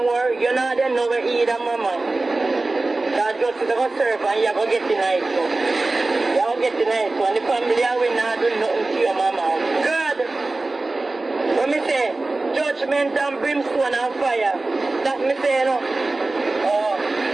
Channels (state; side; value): quieter; left; 3.2 dB